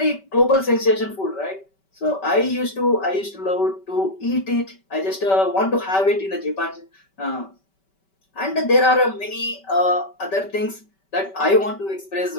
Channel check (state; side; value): late; right; 5.2 ms